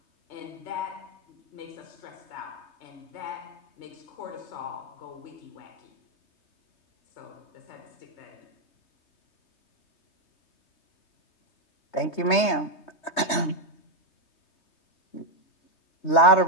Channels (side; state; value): right; late; 3.2 ms